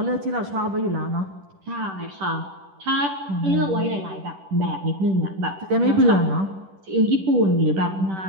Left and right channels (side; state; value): left; late; 10 ms